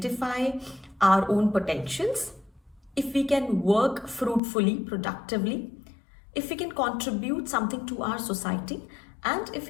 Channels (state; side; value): drops out; right; at 4.4 s